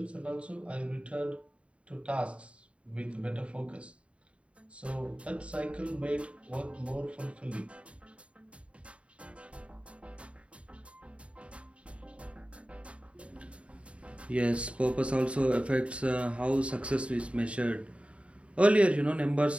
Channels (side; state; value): left; late; 0.061 ms